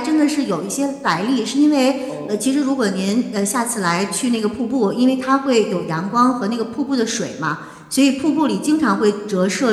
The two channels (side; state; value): both; identical; correlation 1.00